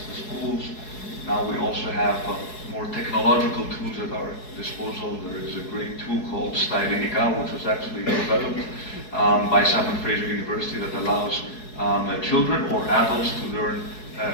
schools. Now we also have more technological tools at our disposal. There is a great tool called Stylenica, which was actually developed by Simon Fraser University, that allows children or adults to learn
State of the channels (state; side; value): late; right; 4.7 ms